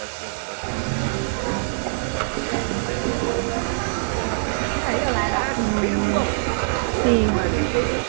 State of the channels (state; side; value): silent; left; 63 dB below the other